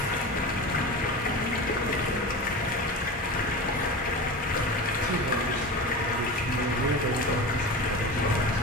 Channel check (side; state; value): both; normal; correlation 0.29